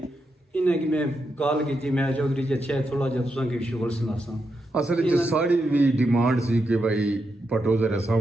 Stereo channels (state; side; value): normal; both; correlation 0.84